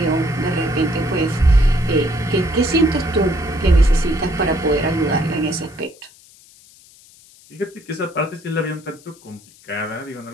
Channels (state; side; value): noise; left; hiss, 25 dB below the sound